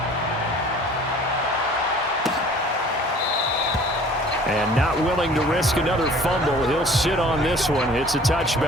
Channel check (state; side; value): normal; both; correlation 0.49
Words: And not willing to risk another fumble. He'll sit on this one. It's a